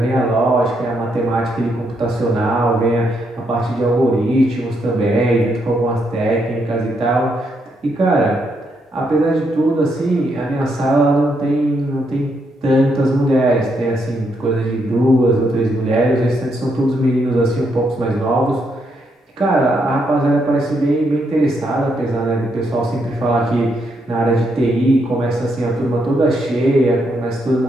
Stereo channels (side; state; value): both; normal; correlation 0.77